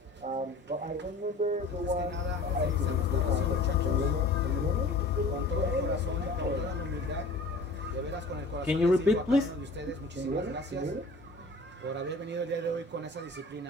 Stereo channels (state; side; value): quieter; right; 3.1 dB